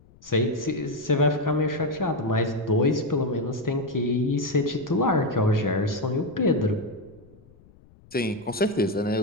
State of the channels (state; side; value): noise; left; rumble, 27 dB below the sound